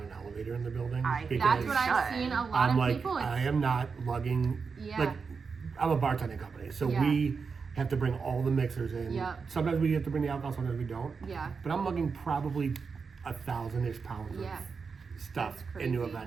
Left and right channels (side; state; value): left; quieter; 5.3 dB